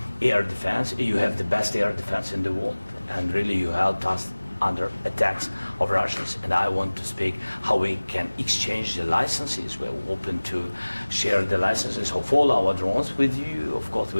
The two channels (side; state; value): both; inverted; correlation -1.00